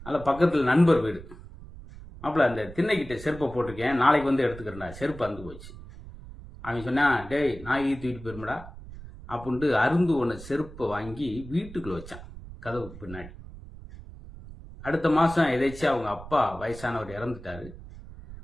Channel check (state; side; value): noise; right; rumble, 15 dB below the sound